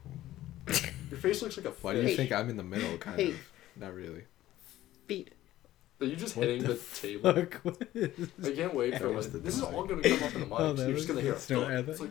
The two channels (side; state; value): right; quieter; 14.6 dB